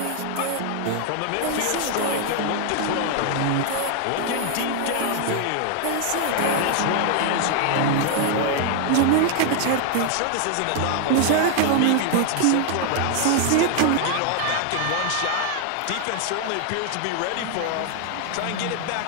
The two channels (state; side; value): different; both; correlation 0.00